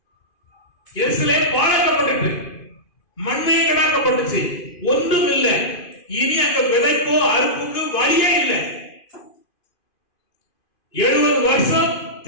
எருசலேம் பாழாக்கப்பட்டு மண்மையை கடாக்கப்பட்டுச்சு, ஒன்றும் இல்லை. இனி அங்க விதைப்போ அறுப்புக்கு வழியே இல்லை. 70 வருஷம்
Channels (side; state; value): right; late; 2.5 ms